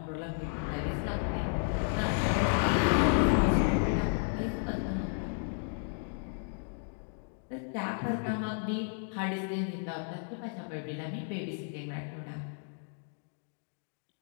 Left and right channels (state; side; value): silent; right; 56 dB below the other